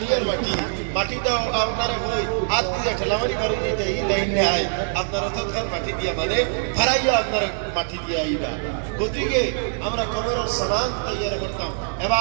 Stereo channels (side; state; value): left; silent; 63 dB below the other